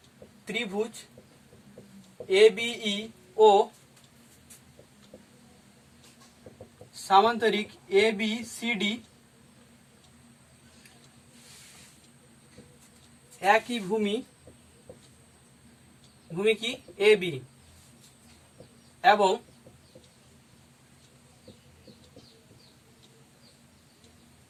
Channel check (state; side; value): identical; both; correlation 1.00